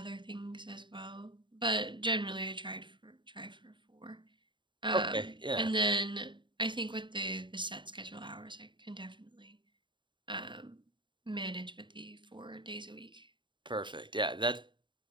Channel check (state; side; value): late; left; 0.23 ms